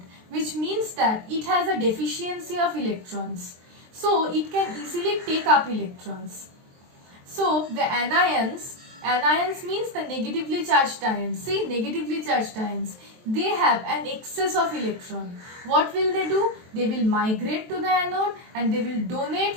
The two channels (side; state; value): left; late; 23 ms